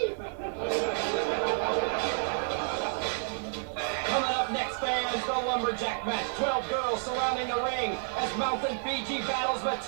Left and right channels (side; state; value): left; silent; digital silence